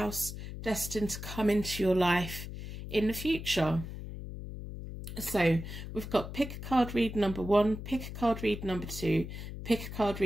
destined to come into your life in the future. So we've got pick a card read number 1, pick a card read number 2, pick a card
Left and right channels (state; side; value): noise; left; hum, 9 dB below the sound